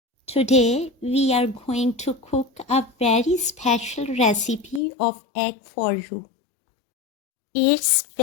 Today we are going to cook a very special recipe of egg for you. It's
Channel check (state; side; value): drops out; right; at 4.8 s